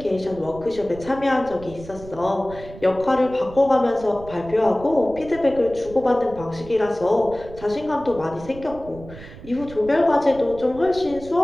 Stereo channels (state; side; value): noise; right; rumble, 16 dB below the sound